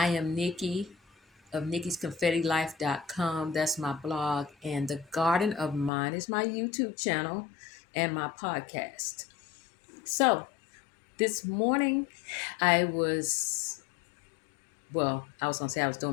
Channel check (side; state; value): right; drops out; at 5.9 s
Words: am Nikki of nikki'sconfettilife.com. That's my blog, and the Garden of Mind is my YouTube channel and my podcast. So, this morning I was I was going to say I was